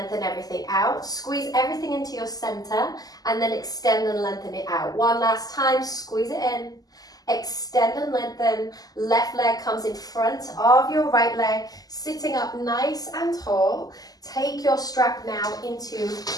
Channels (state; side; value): late; right; 0.18 ms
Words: everything out. Squeeze everything into your center and then extend and lengthen it out. One last time, squeeze it in, Extend and lengthen. Left leg comes in front of your right leg, sitting up nice and tall. Take your strap now into